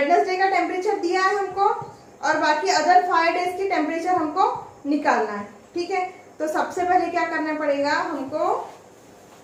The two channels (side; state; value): both; identical; correlation 1.00